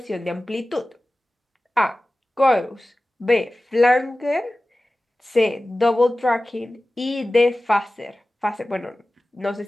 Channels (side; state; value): both; normal; correlation 0.96